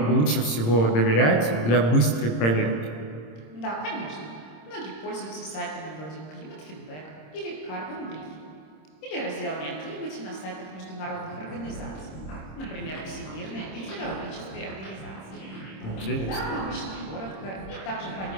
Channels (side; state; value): right; late; 26 ms